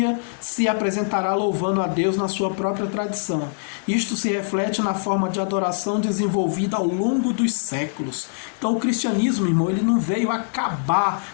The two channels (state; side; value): silent; right; digital silence